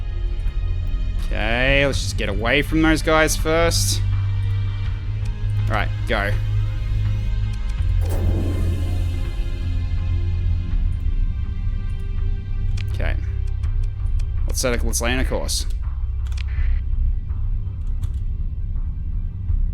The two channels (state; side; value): identical; both; correlation 1.00